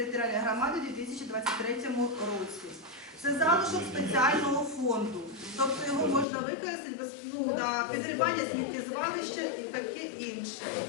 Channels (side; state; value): right; drops out; at 6.2 s